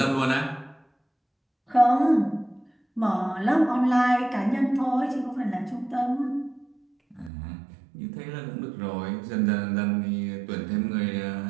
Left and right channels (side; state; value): left; drops out; at 7.3 s